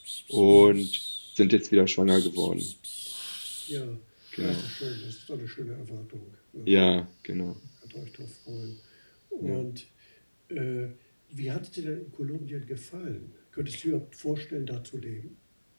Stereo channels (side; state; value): both; inverted; correlation -1.00